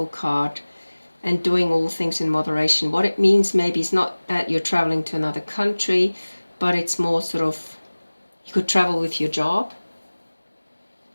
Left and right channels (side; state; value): both; inverted; correlation -1.00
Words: card and doing all things in moderation. What it means maybe is not that you're traveling to another country, but it's more sort of, you could travel with your job,